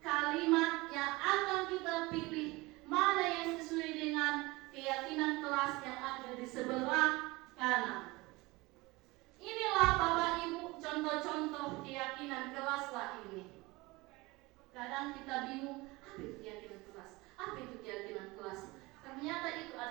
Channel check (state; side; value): quieter; left; 22.5 dB